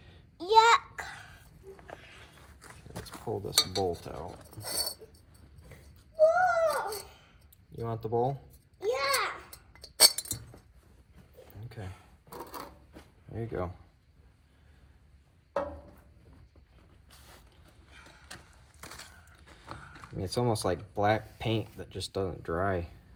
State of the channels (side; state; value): both; identical; correlation 1.00